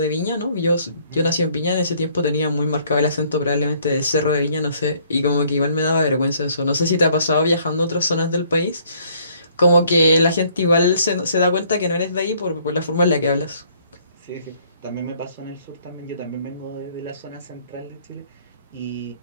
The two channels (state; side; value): inverted; both; correlation -0.62